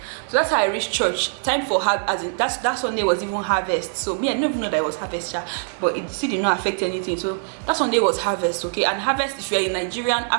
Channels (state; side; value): silent; left; digital silence